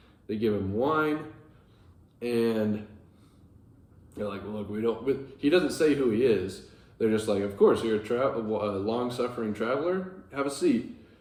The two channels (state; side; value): identical; both; correlation 1.00